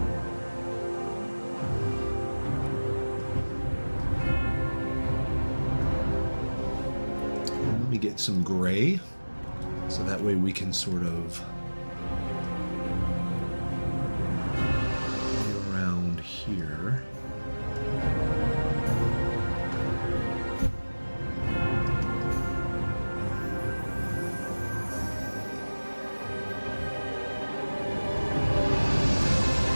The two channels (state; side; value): inverted; both; correlation -1.00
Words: Get some gray so that way we can sort of play around here.